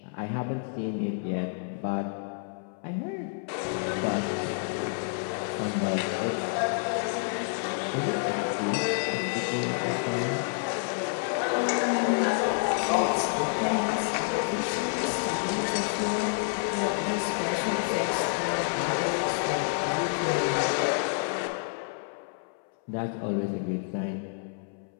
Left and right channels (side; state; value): right; silent; 59 dB below the other